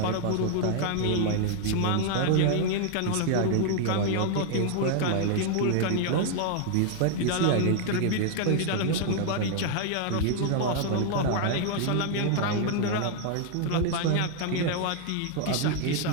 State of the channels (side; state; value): both; different; correlation 0.00